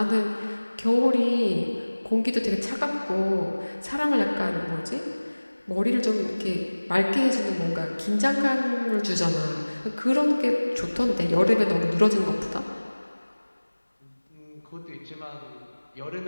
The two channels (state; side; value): inverted; both; correlation -1.00